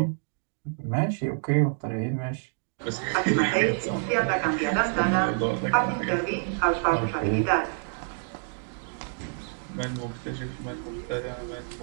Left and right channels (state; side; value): silent; left; 60 dB below the other